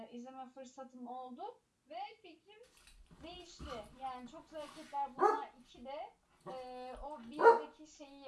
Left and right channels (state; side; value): identical; both; correlation 1.00